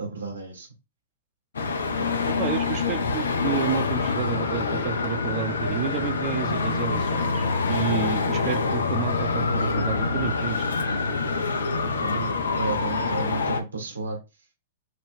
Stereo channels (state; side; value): inverted; both; correlation -0.52